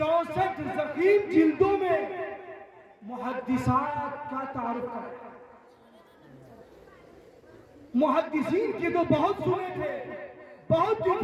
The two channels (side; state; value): both; identical; correlation 1.00